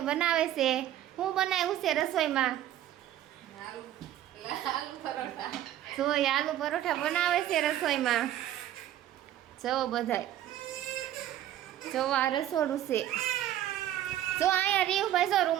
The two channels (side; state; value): left; quieter; 12.5 dB